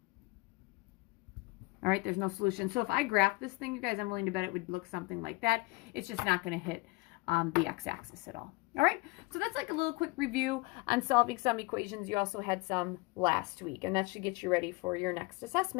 All right, there's no solution. So if I graph this thing, you guys, I'm willing to bet it would look something like that. It's just not going to hit the x-axis at all. All right, so that's like a little quick review on solving some equations. You also had some last week, and that should get you ready for your next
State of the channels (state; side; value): quieter; right; 25.5 dB